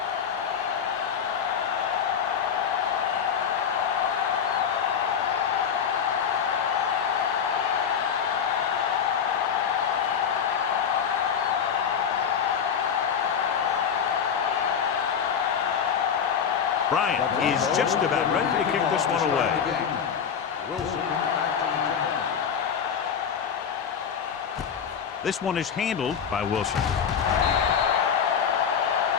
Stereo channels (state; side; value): quieter; right; 7.4 dB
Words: Bryant is just about ready to kick this one away. This one is handled by Wilson.